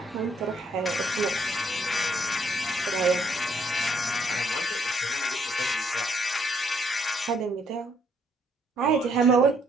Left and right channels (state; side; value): normal; both; correlation 0.68